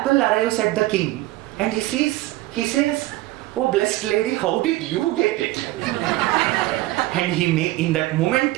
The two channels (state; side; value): quieter; left; 17.9 dB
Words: arrives at the king, and he says, oh blessed lady, how did you get it? And in that